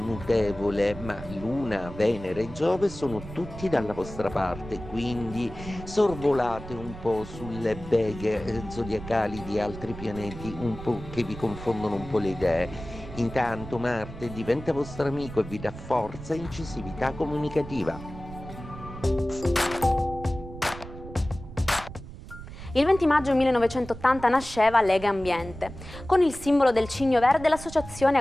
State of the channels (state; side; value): noise; right; rumble, 13 dB below the sound